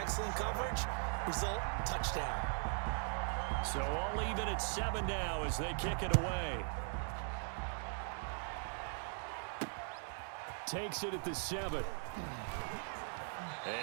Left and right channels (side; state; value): left; silent; 51 dB below the other